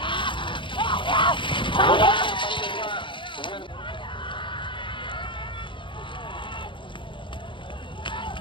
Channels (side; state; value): right; late; 0.24 ms